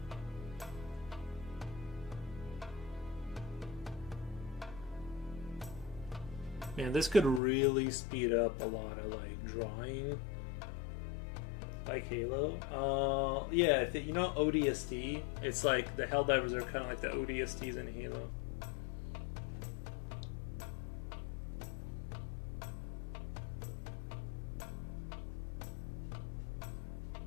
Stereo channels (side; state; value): right; drops out; at 7.4 s